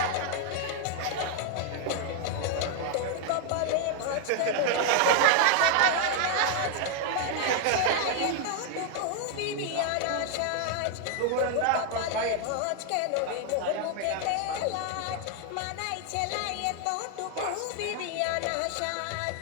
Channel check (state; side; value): different; both; correlation 0.00